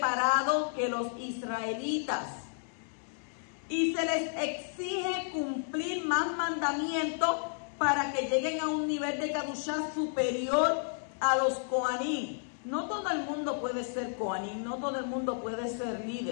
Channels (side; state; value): right; silent; 56 dB below the other